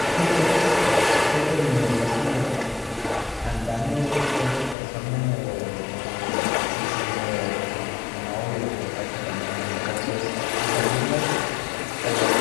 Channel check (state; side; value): drops out; right; at 4.8 s